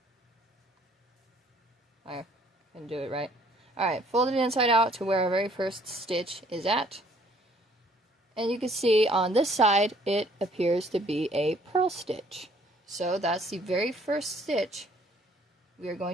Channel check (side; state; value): both; normal; correlation 0.61